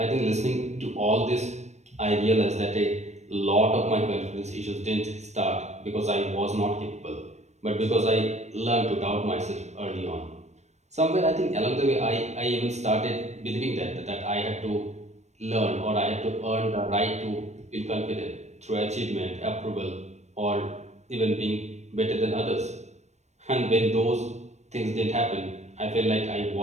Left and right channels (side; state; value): left; late; 0.33 ms